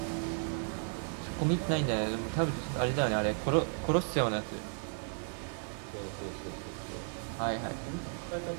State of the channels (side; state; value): left; silent; 55 dB below the other